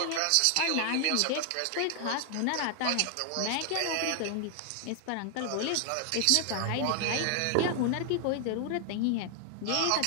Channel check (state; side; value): different; both; correlation 0.00